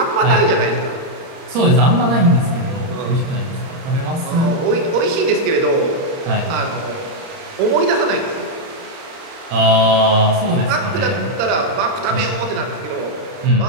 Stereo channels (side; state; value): left; late; 30 ms